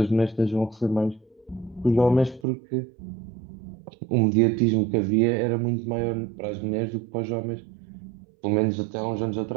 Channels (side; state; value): left; drops out; at 2.5 s